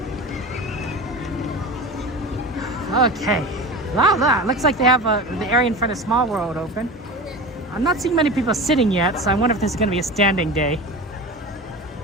Okay. Wow, looks like they have the area in front of Small World open. I'm not seeing many people sitting yet, so I wonder if this is going to be a standing day.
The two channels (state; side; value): normal; both; correlation 0.30